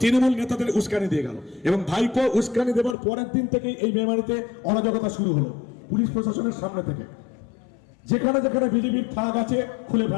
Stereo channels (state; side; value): drops out; right; at 3.0 s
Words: তৃণমূল নেতাদের উস্কানি দিয়ে গেল, এবং ভাইপো উস্কানি দেবার পরের দিন থেকেই এই মেমারিতে অরাজকতা শুরু হলো পুলিশ প্রশাসনের সামনে থেকে। যেখানে যেখানে বিজেপির ফ্ল্যাগ আছে খুলে